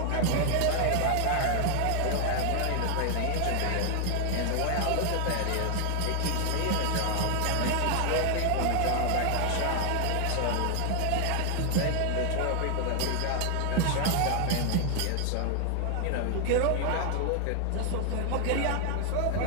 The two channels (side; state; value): both; different; correlation 0.00